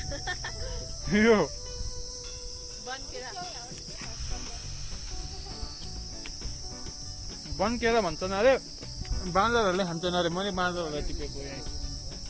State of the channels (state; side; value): identical; both; correlation 1.00